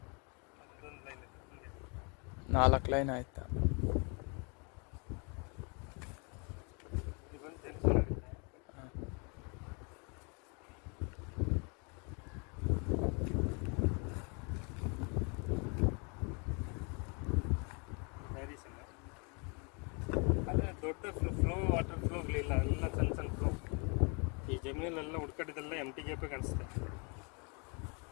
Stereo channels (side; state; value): right; quieter; 33.9 dB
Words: ಅದೊಂದು ಲೈನ್ ಇದೆ ಹಿಂಗೆ. 4 ಲೈನ್ ಆಯ್ತಾ? ಇದೊಂದು ಟೆನ್ಷನ್ ಆಗುತ್ತೆ. ಡೈರೆಕ್ಷನ್ ಅದೇ ದೊಡ್ಡ ಫ್ಲೋ, ವಾಟರ್ ಫ್ಲೋಗಳಿಲ್ಲ, ಎಲ್ಲ ಸಣ್ಣ ಸಣ್ಣ ಫ್ಲೋ. ಈ ಜಮೀನಲ್ಲೆಲ್ಲ ಹುಡ್ಕಡಿದೆಲ್ಲ ಎಮ್ ಟಿ ಗ್ಯಾಪೇ ಕಾಣಿಸುತ್ತೆ.